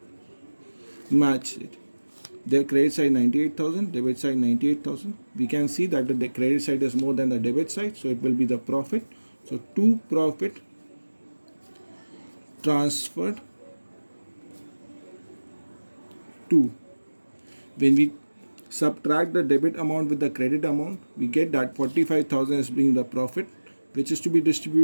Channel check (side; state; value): both; inverted; correlation -1.00